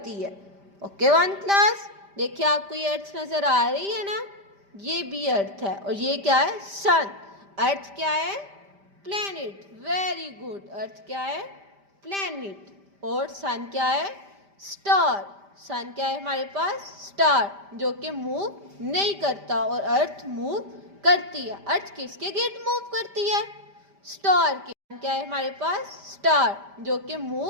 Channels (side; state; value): left; late; 5.1 ms